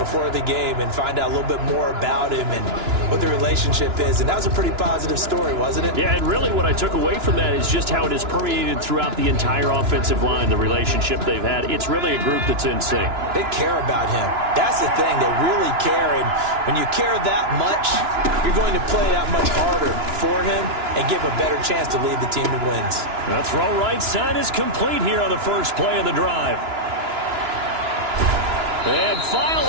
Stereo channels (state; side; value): late; left; 2.9 ms